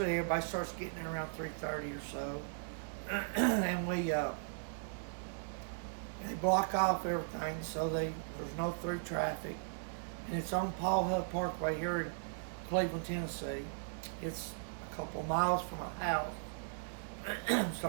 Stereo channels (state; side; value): silent; left; digital silence